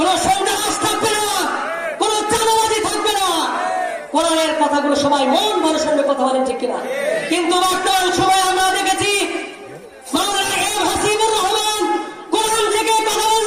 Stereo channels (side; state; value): both; identical; correlation 1.00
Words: সন্ত্রাস থাকবে না, কোন চাঁদাবাজি থাকবে না। কোরআনের কথাগুলো সবাই মন ভরে শুনবে, কথা বলেন ঠিক কিনা? কিন্তু বর্তমান সময় আমরা দেখেছি মাওলানা এম হাসিবুর রহমান কোরআন থেকে কথা